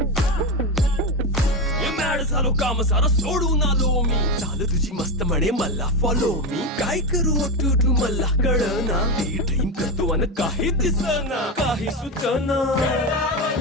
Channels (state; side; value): normal; both; correlation 0.14